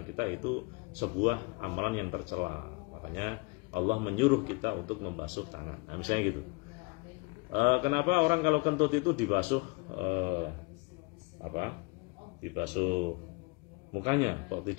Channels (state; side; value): quieter; right; 28.5 dB